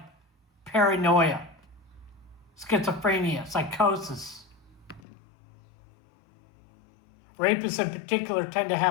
paranoia, schizophrenia, psychosis. Rapists in particular tend to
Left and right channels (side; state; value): right; drops out; at 5.0 s